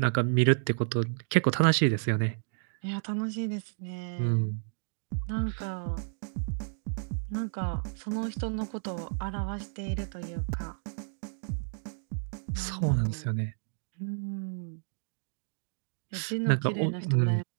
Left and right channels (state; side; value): silent; left; digital silence